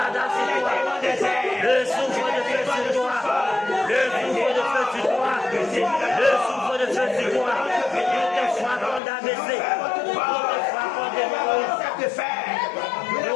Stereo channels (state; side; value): drops out; right; at 9.0 s